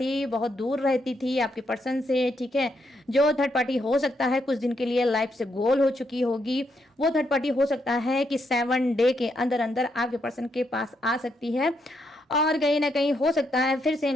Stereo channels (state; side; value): normal; both; correlation 0.78